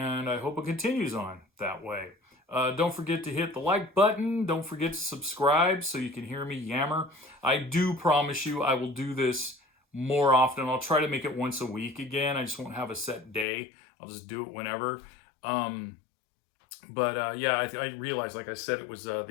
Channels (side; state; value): right; drops out; at 13.5 s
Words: I hope it continues on that way. Don't forget to hit the like button. Don't forget to subscribe so you can hear me yammer. I do promise you I will do this more often. I'll try to make it once a week again. I just won't have a set day. I'll just do it whenever. Yeah, I realized, like I said, it was